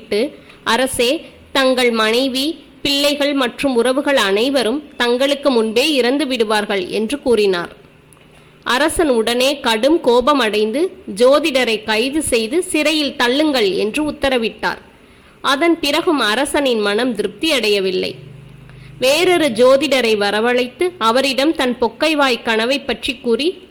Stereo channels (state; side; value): identical; both; correlation 1.00